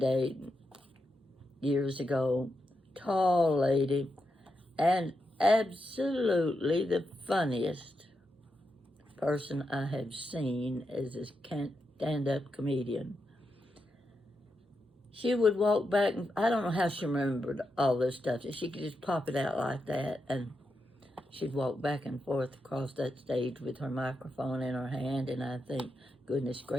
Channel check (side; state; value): both; normal; correlation 0.86